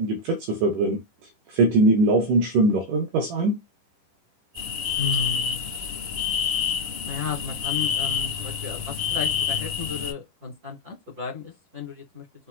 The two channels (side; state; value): left; late; 10 ms